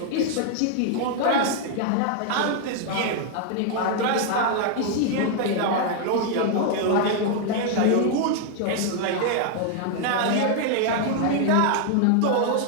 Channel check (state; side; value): different; both; correlation 0.00